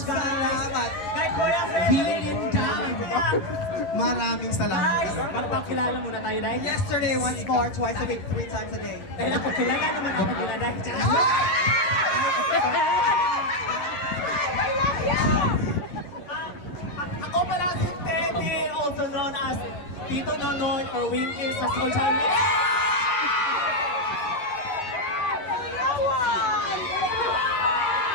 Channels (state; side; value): late; right; 11 ms